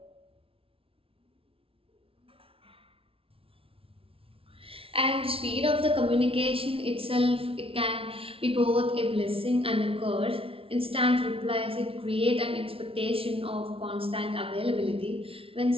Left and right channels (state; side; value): late; left; 0.26 ms